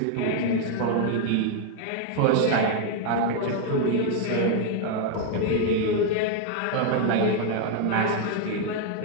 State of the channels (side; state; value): both; different; correlation 0.00